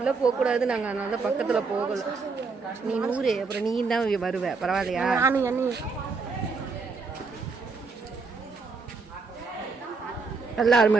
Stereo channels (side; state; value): left; quieter; 4.5 dB